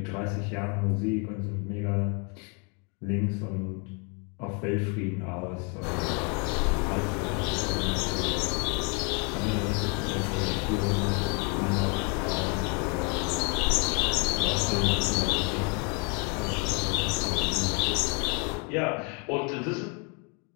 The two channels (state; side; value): quieter; right; 35.1 dB